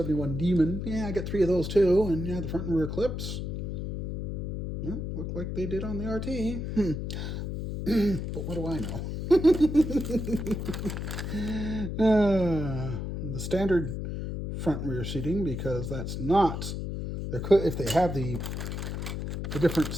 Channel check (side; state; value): left; noise; hum, 4 dB below the sound